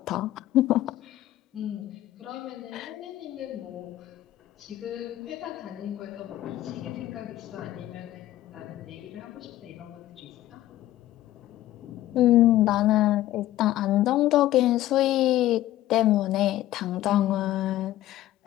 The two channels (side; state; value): right; quieter; 14.5 dB